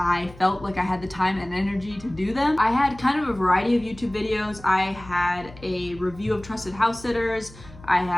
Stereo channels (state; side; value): noise; left; hum, 19 dB below the sound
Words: felt like I had the time and energy to do them. I had kind of a variety of YouTube videos. I had a review of trusted house sitters. I